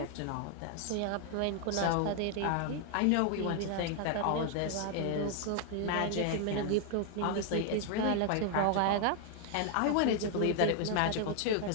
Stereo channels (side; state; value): both; different; correlation 0.00